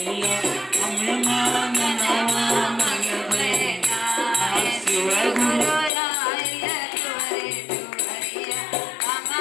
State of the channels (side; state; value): right; drops out; at 5.9 s